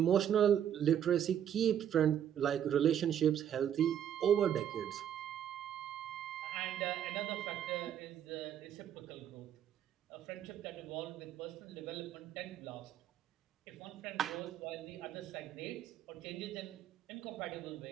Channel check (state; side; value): quieter; left; 9.7 dB